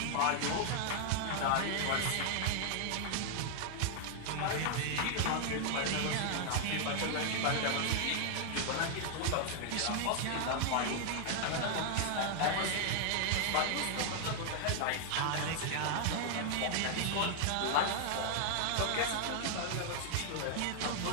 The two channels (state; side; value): different; both; correlation 0.00